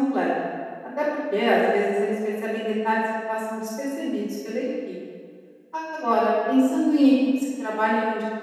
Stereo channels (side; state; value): both; identical; correlation 1.00